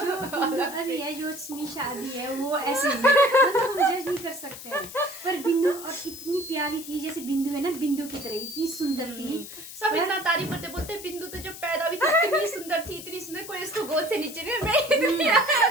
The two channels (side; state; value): left; noise; hiss, 13 dB below the sound